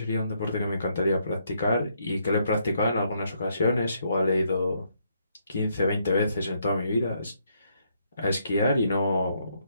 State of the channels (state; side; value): inverted; both; correlation -0.73